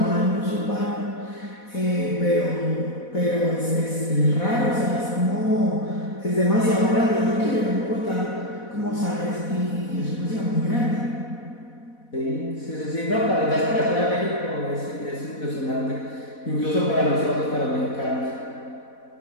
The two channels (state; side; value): late; right; 4.1 ms